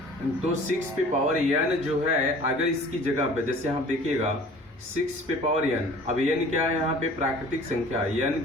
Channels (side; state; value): both; normal; correlation 0.47